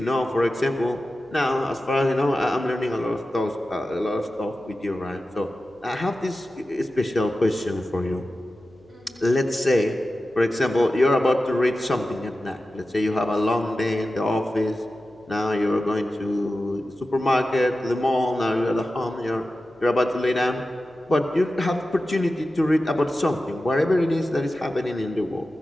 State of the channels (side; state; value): left; noise; hum, 29 dB below the sound